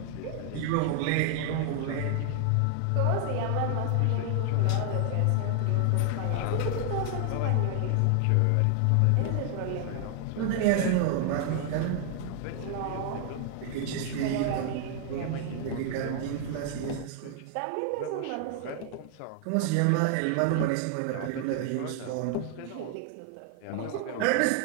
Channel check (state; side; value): different; both; correlation 0.00